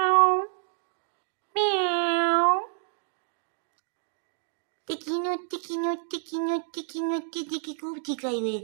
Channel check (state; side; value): silent; left; 59 dB below the other